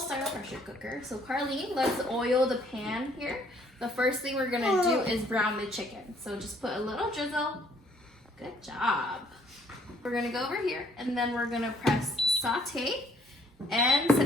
pressure cooker. So Carlene, let's oil the pan here. The first thing we're gonna do is brown the chicken. So just put a little drizzle. Good job. We're gonna go over here and then we're gonna press saute and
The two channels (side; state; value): both; normal; correlation 0.63